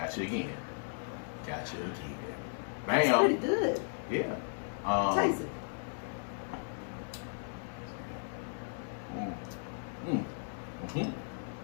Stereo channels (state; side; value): silent; right; digital silence